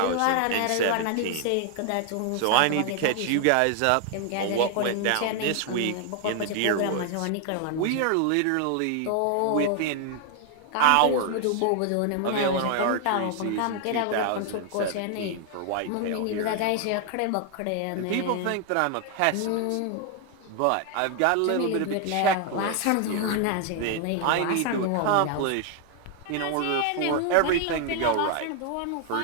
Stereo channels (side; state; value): both; different; correlation 0.00